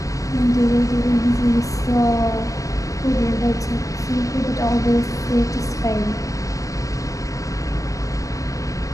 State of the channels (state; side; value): late; right; 0.16 ms